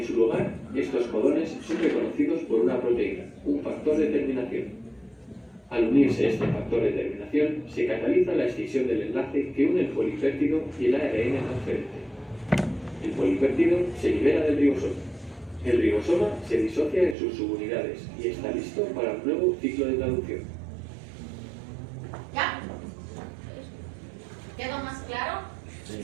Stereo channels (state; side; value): drops out; left; at 17.2 s